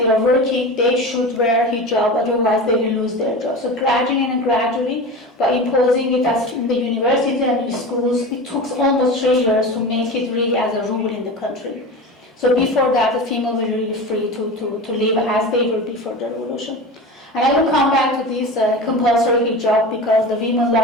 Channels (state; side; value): normal; both; correlation 0.30